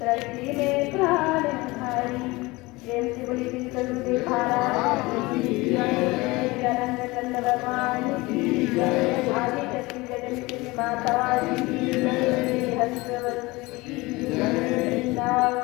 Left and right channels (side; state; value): right; quieter; 22.3 dB